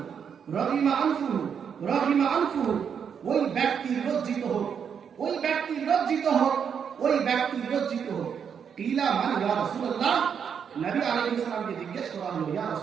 রহিমা আনফুহু, রহিমা আনফুহু, ওই ব্যক্তি লজ্জিত হোক, ওই ব্যক্তি লজ্জিত হোক, ওই ব্যক্তি লজ্জিত হোক। কিলা মান ইয়া রাসূলুল্লাহ, নবী আলাইহিস সালামকে জিজ্ঞেস করা হলো, ইয়া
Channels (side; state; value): left; quieter; 7.3 dB